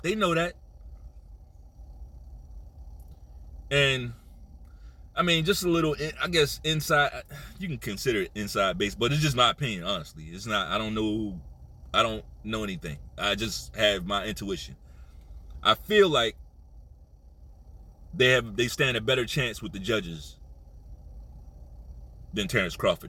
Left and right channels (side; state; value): both; identical; correlation 1.00